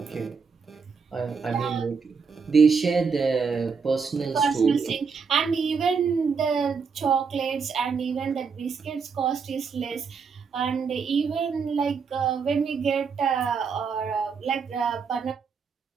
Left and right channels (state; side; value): quieter; left; 5.5 dB